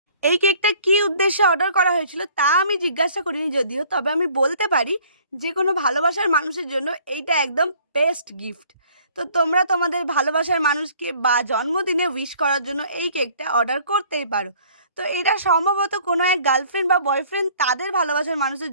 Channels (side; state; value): both; inverted; correlation -0.55